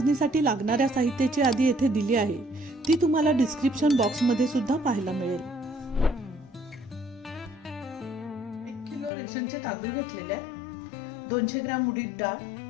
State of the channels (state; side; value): drops out; right; at 9.1 s